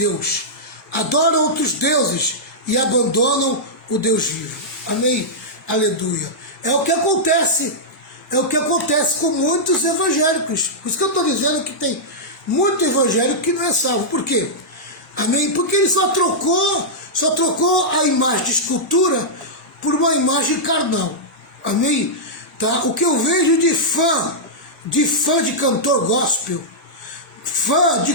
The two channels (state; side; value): normal; both; correlation -0.10